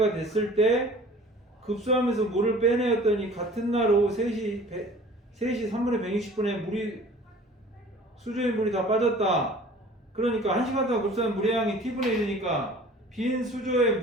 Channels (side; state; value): both; normal; correlation 0.46